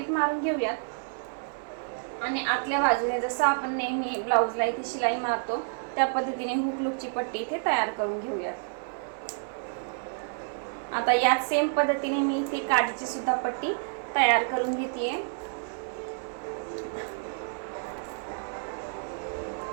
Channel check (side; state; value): left; silent; 58 dB below the other